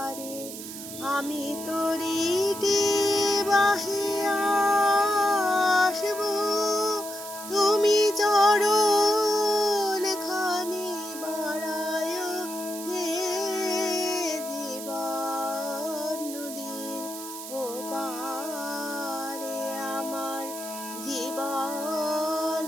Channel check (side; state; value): right; noise; hiss, 10 dB below the sound